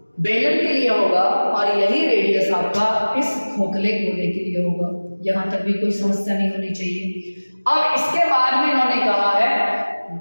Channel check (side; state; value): both; inverted; correlation -1.00